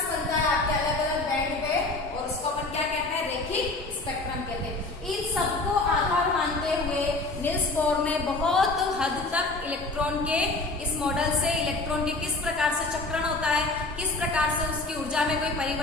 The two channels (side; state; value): right; quieter; 3.3 dB